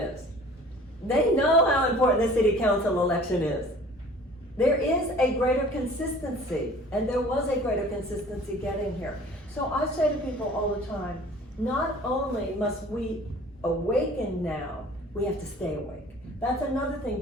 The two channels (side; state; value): both; normal; correlation 0.48